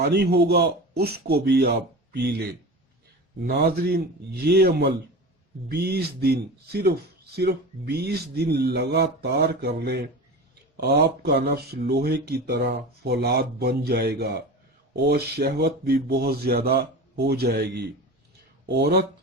ہوگا اس کو بھی آپ پی لیں۔ ناظرین، یہ عمل 20 دن صرف 20 دن لگاتار کر لیں، آپ کا نفس لوہے کی طرح فولاد بن جائے گا اور شہوت بھی بہت زیادہ ہو جائے گی۔ عورت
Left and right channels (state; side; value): normal; both; correlation 0.30